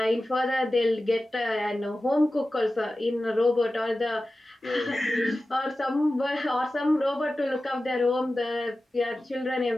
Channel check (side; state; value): both; normal; correlation 0.95